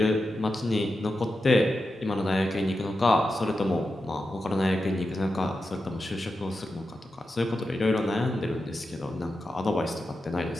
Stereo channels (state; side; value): normal; both; correlation 0.90